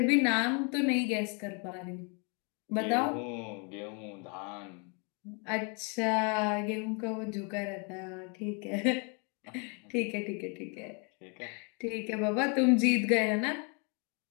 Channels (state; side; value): quieter; right; 34.5 dB